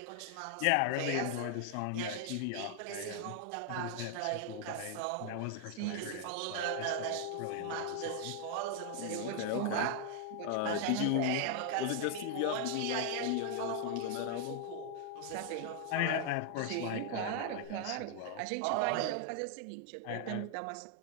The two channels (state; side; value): different; both; correlation 0.00